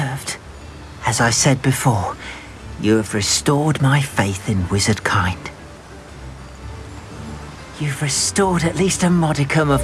As I said before, you have restored my faith in wizard kind. You've restored at least a modicum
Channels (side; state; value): both; identical; correlation 1.00